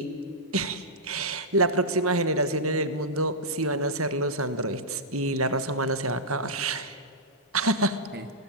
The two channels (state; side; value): normal; both; correlation -0.12